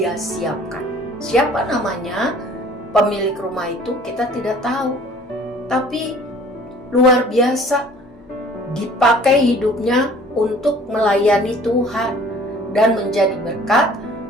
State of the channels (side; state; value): both; normal; correlation 0.52